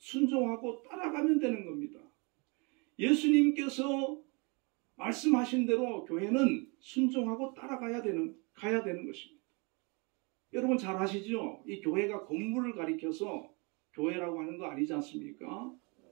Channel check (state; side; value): quieter; left; 30.7 dB